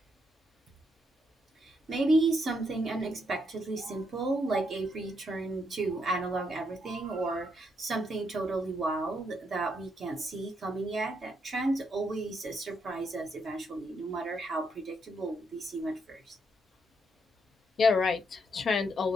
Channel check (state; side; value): normal; both; correlation 0.77